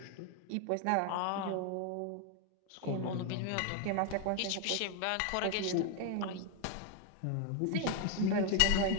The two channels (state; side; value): different; both; correlation 0.01